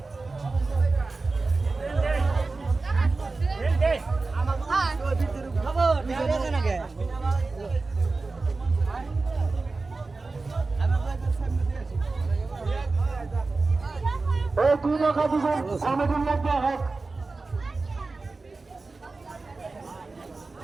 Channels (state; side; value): quieter; left; 3.7 dB